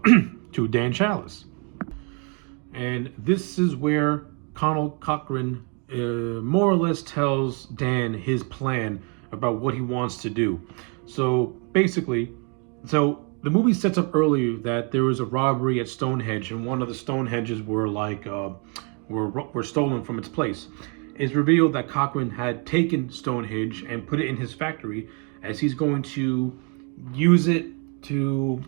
Dan Chalice. And this is where Cochrane more or less tells Dan his plan about what he wants to do. So basically, the movie sets up earlier that there was a robbery at Stonehenge, and one of the Stonehenges were were stolen from its place. It's revealed that Cochrane had taken Stonehenge and put it in his factory, as he's going to use it to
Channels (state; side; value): quieter; left; 35.2 dB